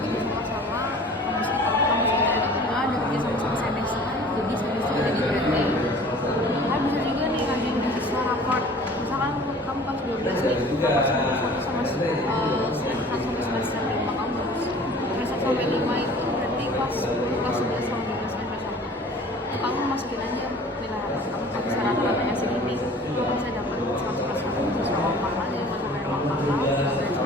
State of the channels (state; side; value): normal; both; correlation 0.46